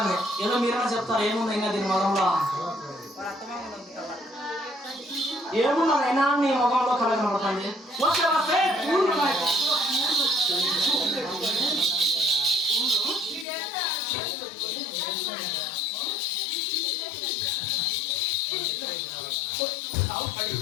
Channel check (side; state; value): right; drops out; at 13.5 s